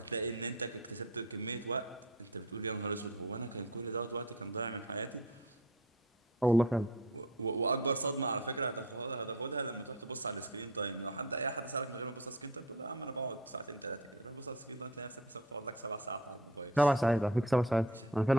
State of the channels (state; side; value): normal; both; correlation 0.36